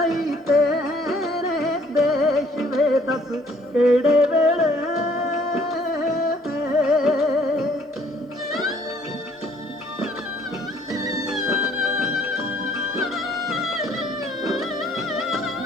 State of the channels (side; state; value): both; normal; correlation 0.60